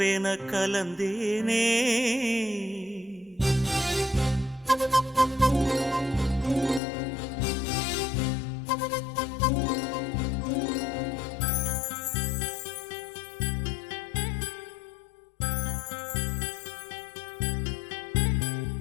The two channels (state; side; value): drops out; right; at 6.8 s